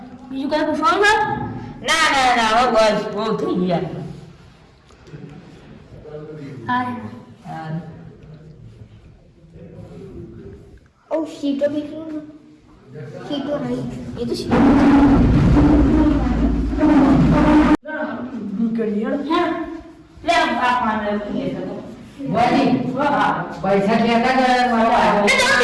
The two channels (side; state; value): both; identical; correlation 1.00